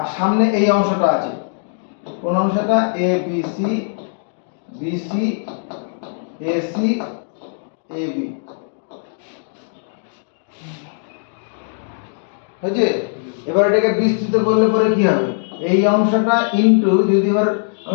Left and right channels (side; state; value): right; silent; digital silence